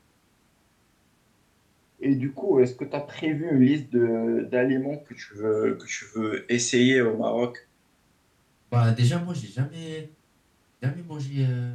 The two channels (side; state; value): both; identical; correlation 1.00